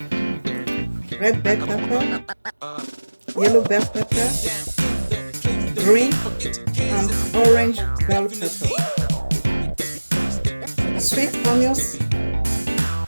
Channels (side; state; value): both; inverted; correlation -1.00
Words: red bell pepper, yellow bell pepper, green and orange bell pepper, sweet onions